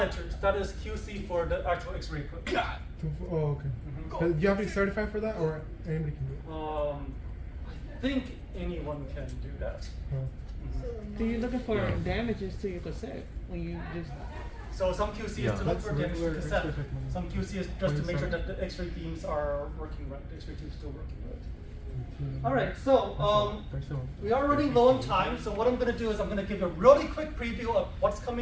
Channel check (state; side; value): identical; both; correlation 1.00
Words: That is QC for the actual X-ray equipment. Oh, okay. Do you have to be certified for that, or anybody can do it? I think anyone can do that. Oh. So you're looking for damages to your cassette when you just. So some QC Yeah, is to look that's for damage to regular cassette. X-ray technology. Some QC is just to make sure 27. that the X-ray beams are working right. The X-ray tube is still working right. All right. So we are running low on time. So what I'm going to do is I'm going to give a really quick preview of what's